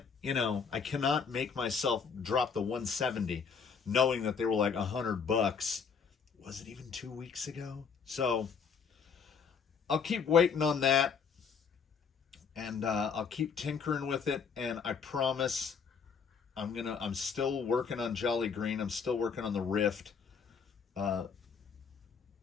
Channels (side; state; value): right; quieter; 6.1 dB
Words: make myself drop the 170 knowing that they were like $100. Was it even 2 weeks ago? So I'll keep waiting on that, and I'll keep tinkering with it. And I promise, I'm still working on Jolly Green. I'm still working on the Rift. I